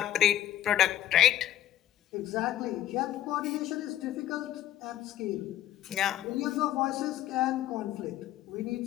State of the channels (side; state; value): right; quieter; 12.5 dB